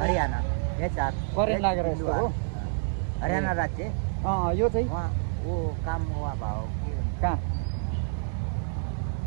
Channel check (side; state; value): left; silent; digital silence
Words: करेन्ट लागेर यस्तो हो? हरियाणा राज्य। यो चाहिँ वो काम हुआ भाव कहाँ?